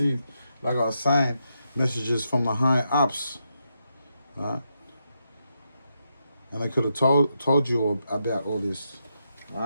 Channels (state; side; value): inverted; both; correlation -0.82